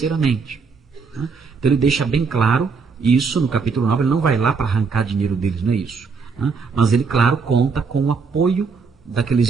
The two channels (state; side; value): quieter; left; 5.1 dB